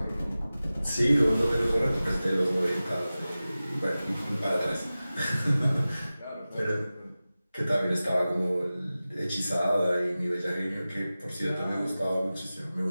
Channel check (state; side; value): inverted; both; correlation -0.96